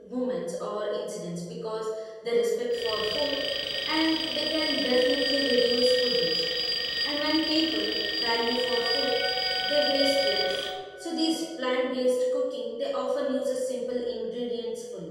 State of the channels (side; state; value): both; identical; correlation 1.00